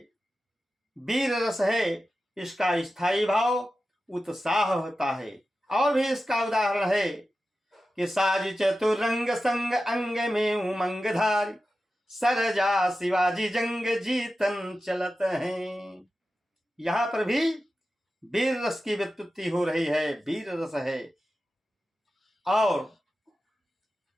वीर रस है, इसका स्थायी भाव उत्साह होता है। और भी इसका उदाहरण है कि साज चतुरंग संग अंग में उमंग धारी, सरजा शिवाजी जंग जीतन चलत हैं। यहां पर भी वीर रस की व्युत्पत्ति हो रही है, वीर रस है। और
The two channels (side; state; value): both; normal; correlation 0.93